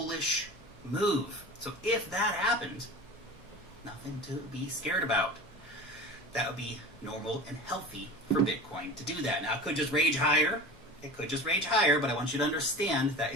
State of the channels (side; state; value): both; normal; correlation 0.35